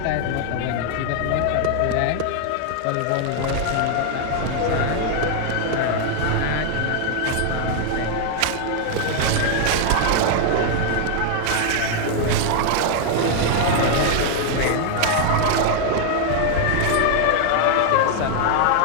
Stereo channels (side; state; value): both; different; correlation 0.00